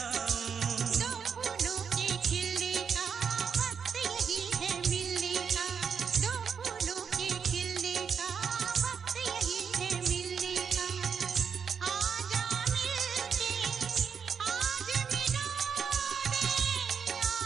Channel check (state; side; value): quieter; left; 6.6 dB